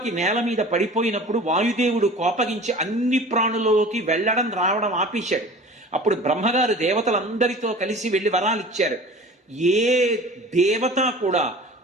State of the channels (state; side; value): normal; both; correlation 0.41